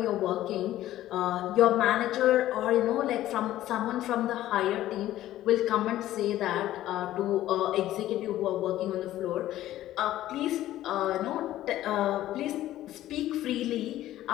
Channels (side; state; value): right; quieter; 14.0 dB